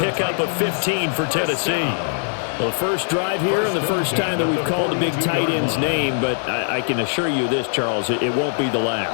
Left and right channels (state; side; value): silent; right; digital silence